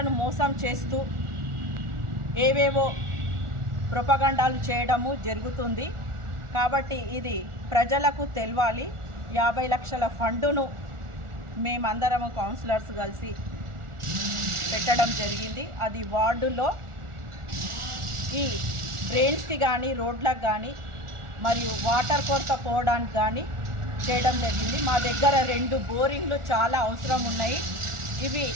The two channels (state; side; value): late; left; 1.4 ms